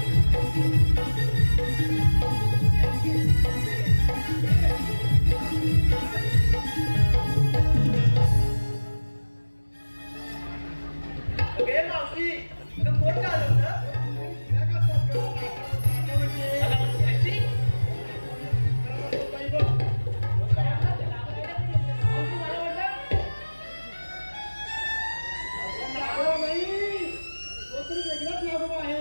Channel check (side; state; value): both; inverted; correlation -1.00